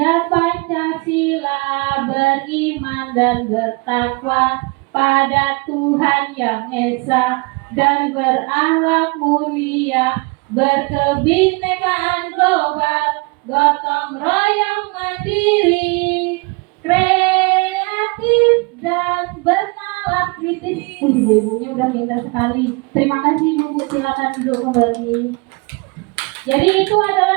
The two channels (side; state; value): left; quieter; 29.2 dB